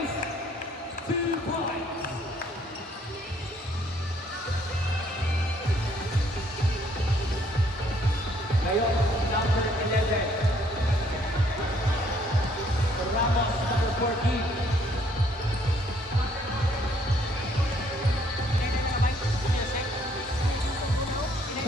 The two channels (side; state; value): both; normal; correlation 0.65